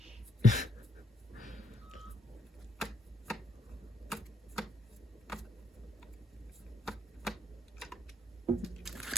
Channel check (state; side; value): normal; both; correlation 0.73